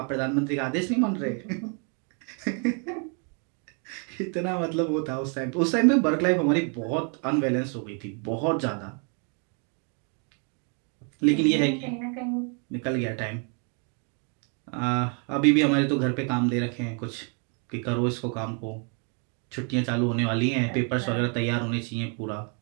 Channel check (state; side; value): quieter; left; 39.5 dB